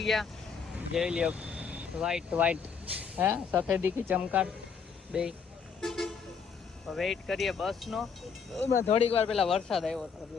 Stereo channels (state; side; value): quieter; right; 6.2 dB